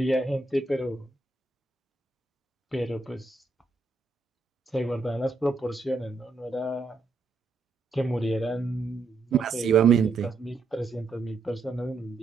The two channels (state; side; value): quieter; left; 3.8 dB